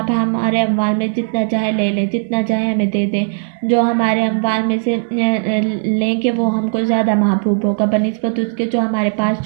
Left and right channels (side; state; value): left; silent; digital silence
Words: ہمارے اموال میں جتنا چاہے لے لیں، جتنا چاہے ہمیں دے دیں، جو ہمارے اموال میں سے لیں گے وہ ہم کو زیادہ محبوب ہوگا بنسبت اس کے جو ہمارے پاس